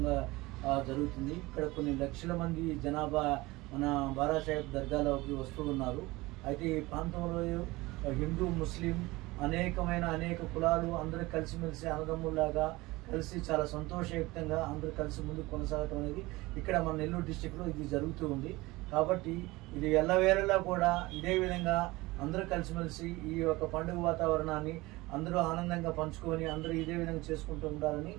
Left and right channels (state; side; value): quieter; left; 21.0 dB